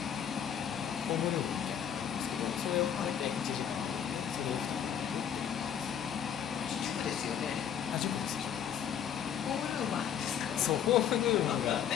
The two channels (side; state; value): right; quieter; 8.8 dB